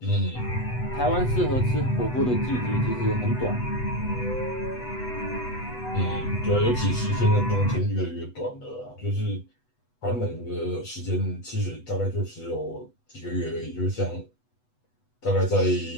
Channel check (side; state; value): right; late; 8.1 ms